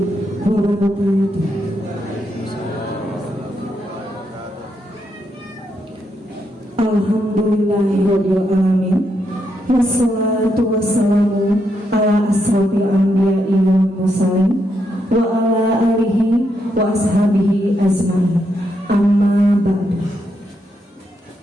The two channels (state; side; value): normal; both; correlation 0.80